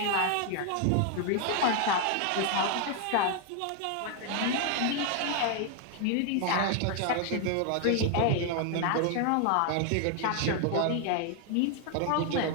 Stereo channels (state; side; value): different; both; correlation 0.00